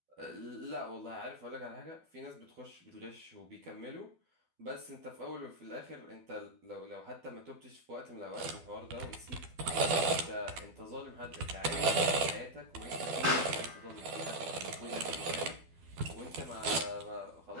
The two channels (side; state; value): left; late; 12 ms